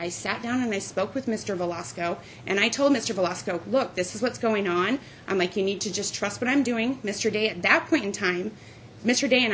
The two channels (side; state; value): both; identical; correlation 1.00